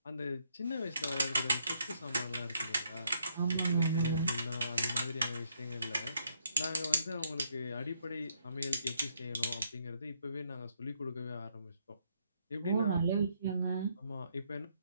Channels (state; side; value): inverted; both; correlation -0.72